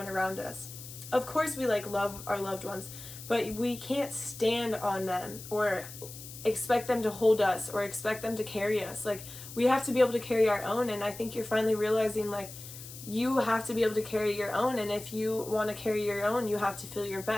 around us. Of course, we like love our loved ones, but we can't stand on them or expect them to hold us or expect them to carry us. Like, we have to be able to carry our own. And I think you're finally realizing like you have to be able to carry your own. And if you want to carry your own, you have to feel your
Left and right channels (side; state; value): left; noise; hiss, 14 dB below the sound